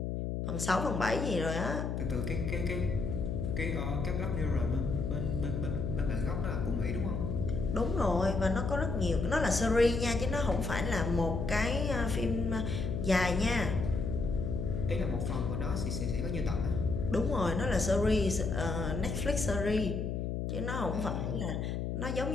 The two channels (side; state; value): left; noise; hum, 2 dB below the sound